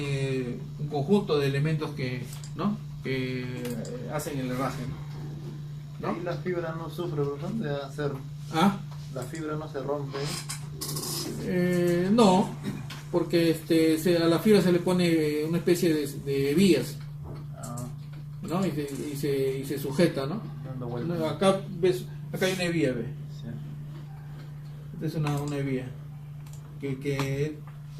un conjunto de elementos que hacen el herraje, ¿no? Y la fibra no sufre, ¿verdad? De hacer... ¿Ah? La fibra no se rompe. No, porque a la fibra se le pone una especie de vías, ¿no? Y se sujeta, ¿no? Dando vueltas. Acá hay una vía, ¿ves? Sí. Esta es una vía que es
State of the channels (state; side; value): identical; both; correlation 1.00